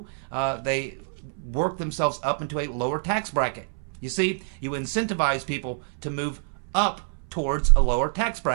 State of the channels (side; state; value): left; silent; 61 dB below the other